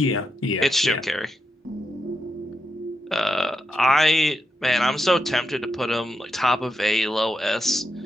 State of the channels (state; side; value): normal; both; correlation 0.85